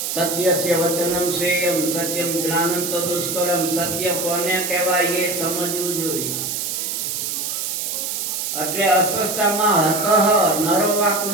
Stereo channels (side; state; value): right; noise; hiss, 2 dB below the sound